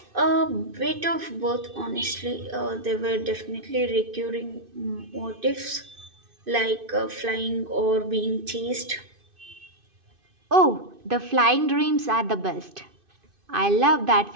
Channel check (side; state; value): left; late; 2.5 ms